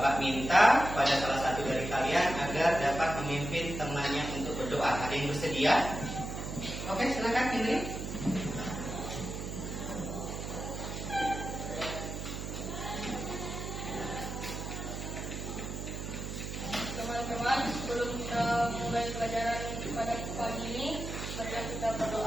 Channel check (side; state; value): right; noise; hum, 6 dB below the sound